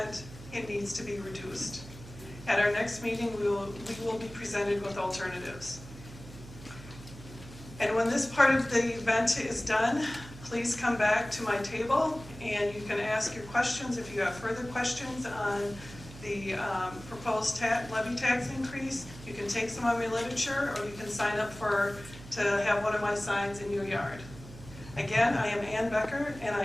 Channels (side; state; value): right; noise; hum, 16 dB below the sound